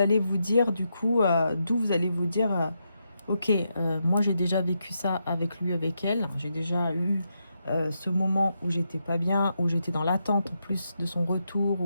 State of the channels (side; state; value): both; inverted; correlation -0.83